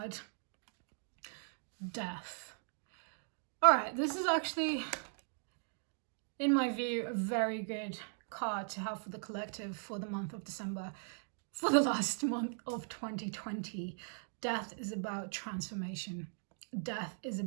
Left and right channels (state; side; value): silent; left; 52 dB below the other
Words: Death. All right, this is actually, in my view, a very good card to have for the collective for the month of December, for the last month of 2020. Death is about transformation. Death is